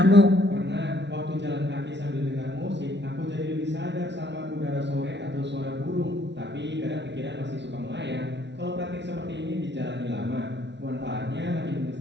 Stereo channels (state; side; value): late; left; 0.51 ms